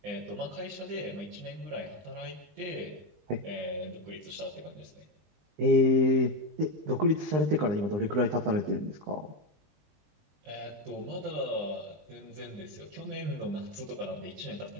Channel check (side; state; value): left; late; 20 ms